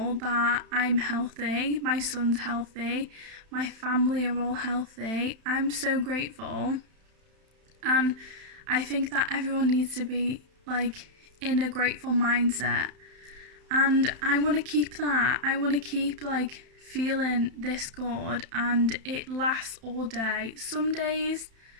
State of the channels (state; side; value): late; left; 31 ms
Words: that I'm healthy, my son's healthy, my family are all healthy. I'm so grateful. And I think that everyone needs to be like in a grateful mindset. And I want to keep that. I want to keep like feeling this good, and it lasts all day. Some days